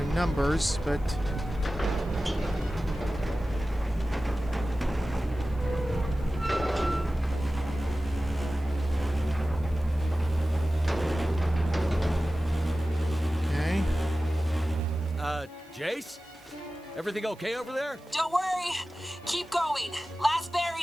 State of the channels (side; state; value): right; noise; hiss, 29 dB below the sound